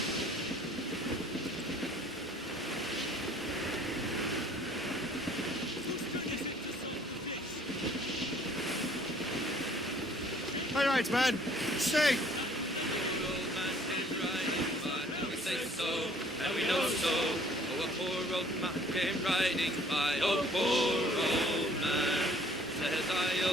All right, man. Sing. And we know so. Oh, a poor old man came riding by. Oh, poor old man. Says I,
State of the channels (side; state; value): both; normal; correlation 0.57